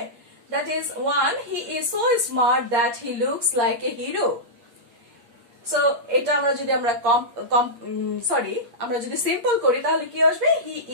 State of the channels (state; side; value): late; left; 8.5 ms